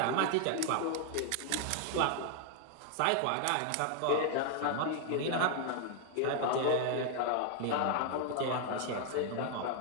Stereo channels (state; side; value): different; both; correlation 0.00